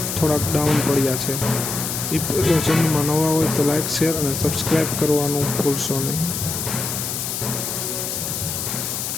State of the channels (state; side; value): noise; left; hiss, 3 dB below the sound